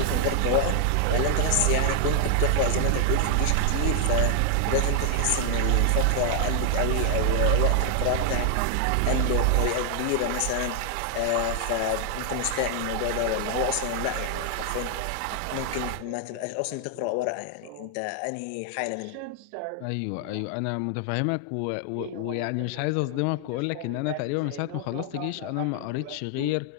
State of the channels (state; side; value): different; both; correlation 0.00